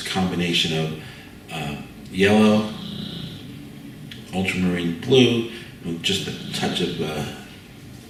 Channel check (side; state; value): both; identical; correlation 1.00